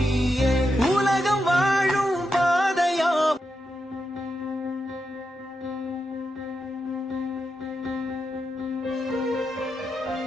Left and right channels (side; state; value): both; normal; correlation 0.86